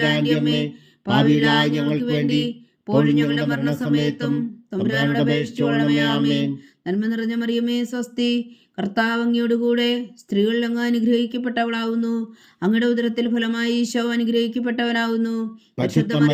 അമ്മേ, പാപികളായ ഞങ്ങൾക്ക് വേണ്ടി ഇപ്പോഴും ഞങ്ങളുടെ മരണസമയത്തും തമ്പുരാനോട് അപേക്ഷിച്ചുകൊള്ളണമേ. ആമേൻ. നന്മ നിറഞ്ഞ മറിയമേ സ്വസ്തി, കർത്താവ് അങ്ങയോടുകൂടെ സ്ത്രീകൾ അങ്ങ് അനുഗ്രഹിക്കപ്പെട്ടവളാവുന്നു. അങ്ങയുടെ ഉദരത്തിൽ ഫലമായി ഈശോ അനുഗ്രഹിക്കപ്പെട്ടവനാവുന്നു. പരിശുദ്ധ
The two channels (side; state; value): both; identical; correlation 1.00